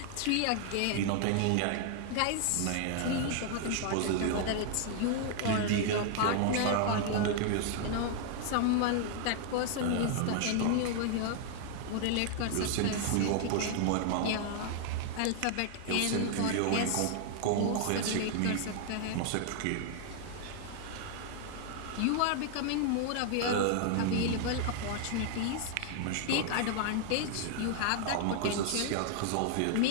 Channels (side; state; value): both; different; correlation 0.00